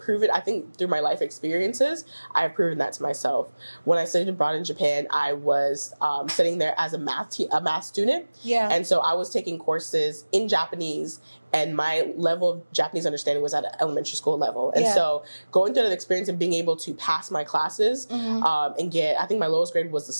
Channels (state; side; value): inverted; both; correlation -1.00